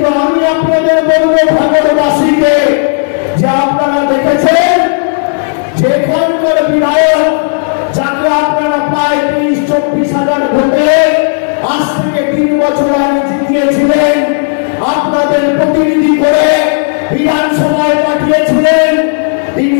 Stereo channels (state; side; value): silent; right; digital silence